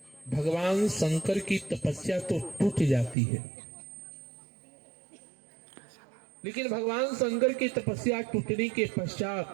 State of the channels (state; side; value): drops out; left; at 3.2 s